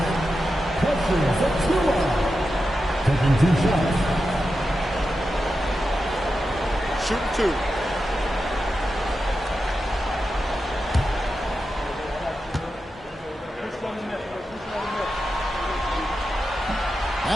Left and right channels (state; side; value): normal; both; correlation 0.90